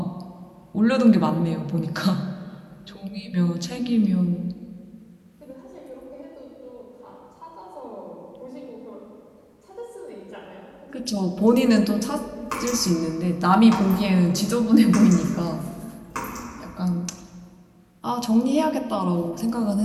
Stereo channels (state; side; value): identical; both; correlation 1.00